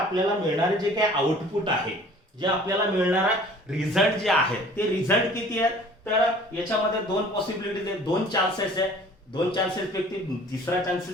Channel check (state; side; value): normal; both; correlation 0.50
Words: मिळणारे जे काय आउटपुट आहे, जे आपल्याला मिळणारा रिझल्ट जे आहे ते रिझल्ट किती आहेत, तर याच्यामध्ये दोन पॉसिबिलिटीज आहेत, दोन चान्सेस आहेत. दोन चान्सेस पैकी तिसरा